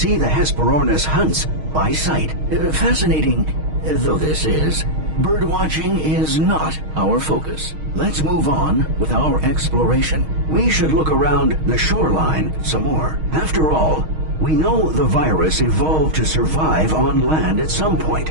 the Hesperornis hunts by sight. Fascinating though this is, birdwatching is not our focus. Let's move on with our exploration. We should look around the shoreline some more. After all, we know the virus evolved to survive on land at some point,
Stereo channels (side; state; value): left; late; 6.4 ms